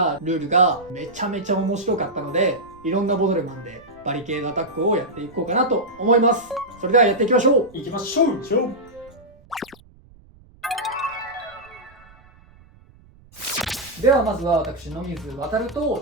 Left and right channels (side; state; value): right; noise; rumble, 26 dB below the sound